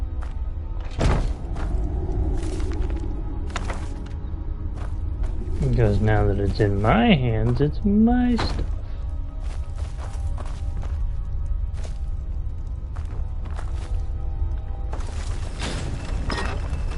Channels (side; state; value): both; identical; correlation 1.00